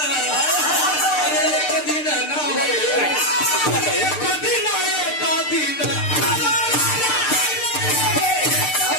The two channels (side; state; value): right; late; 6.7 ms